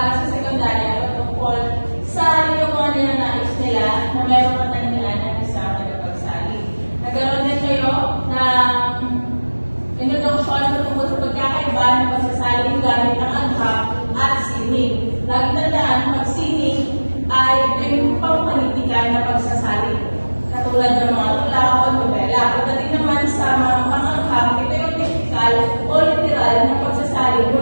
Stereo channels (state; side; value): inverted; both; correlation -1.00